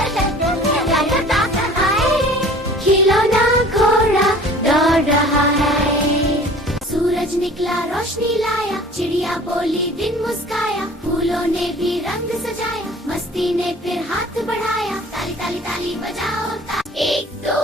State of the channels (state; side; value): normal; both; correlation 0.46